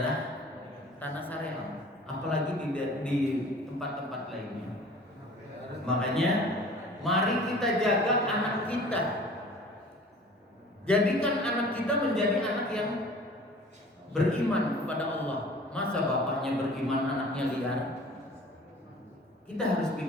Tanah Sareal, apalagi di tempat-tempat lainnya. Makanya mari kita jaga anak kita. Jadikan anak kita menjadi anak yang beriman kepada Allah. Masa bapaknya beriman, anaknya liar? Kita harus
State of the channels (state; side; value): normal; both; correlation 0.46